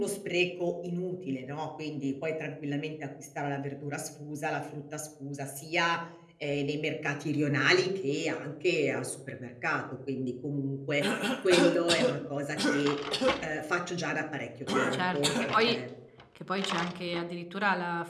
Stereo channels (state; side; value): identical; both; correlation 1.00